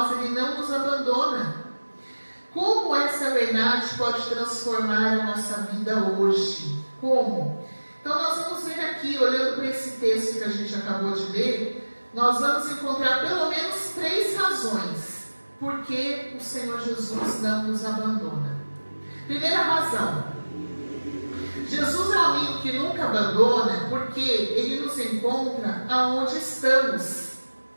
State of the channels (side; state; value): both; inverted; correlation -1.00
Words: Ele não nos abandona. Como essa verdade pode transformar a nossa vida hoje? Como? Então nós vamos ver aqui, olhando para esse texto que a gente acabou de ler, nós vamos encontrar pelo menos 3 razões por que o Senhor Jesus não nos abandona. Primeira razão: Jesus é um amigo que nunca abandona, porque Ele nos encontra aonde estamos.